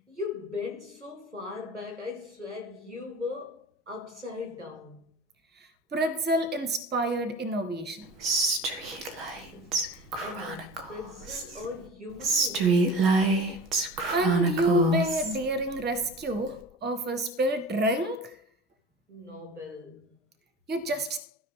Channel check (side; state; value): both; normal; correlation 0.37